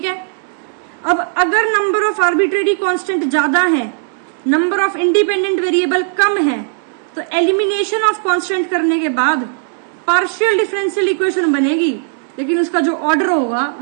है, अब अगर नंबर ऑफ आर्बिट्रेरी कांस्टेंट ज्यादा है, नंबर ऑफ इंडिपेंडेंट वेरिएबल कम है, तो एलिमिनेशन ऑफ कांस्टेंट करने के बाद पार्शियल डिफरेंशियल इक्वेशन बनेगी, लेकिन उसका जो ऑर्डर होगा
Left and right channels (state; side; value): silent; left; 69 dB below the other